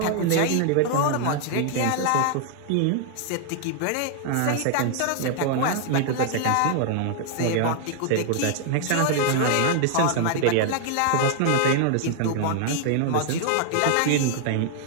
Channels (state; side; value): different; both; correlation 0.00